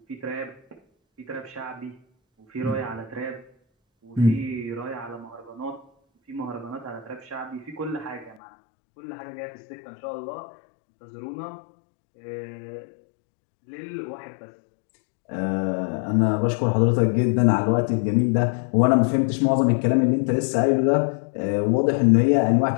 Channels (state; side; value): drops out; right; at 8.4 s